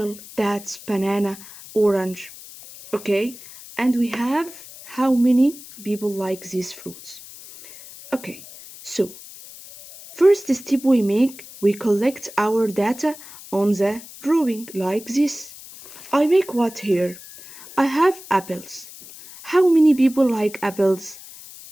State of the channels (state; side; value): noise; left; hiss, 17 dB below the sound